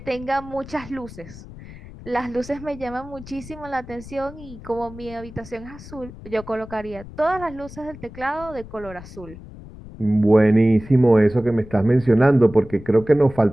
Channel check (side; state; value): left; noise; rumble, 16 dB below the sound